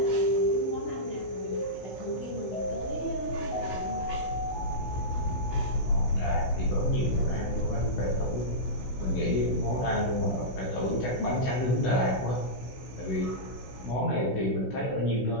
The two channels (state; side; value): late; right; 16 ms